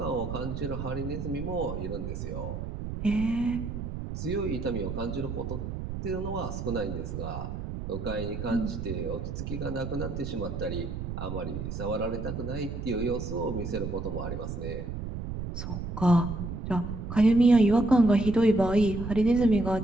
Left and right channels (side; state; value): right; noise; rumble, 6 dB below the sound